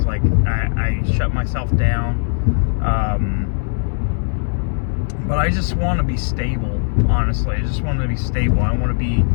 Like I shut myself down. But I just want to be stable, honestly. I just want to be stable. I want to be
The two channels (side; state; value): right; silent; digital silence